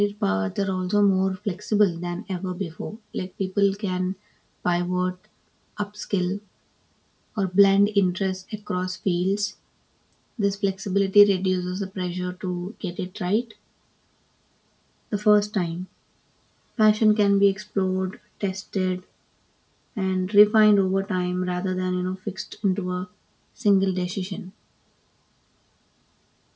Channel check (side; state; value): both; identical; correlation 1.00